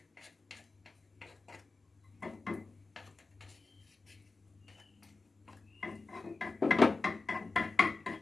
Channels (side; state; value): right; quieter; 3.7 dB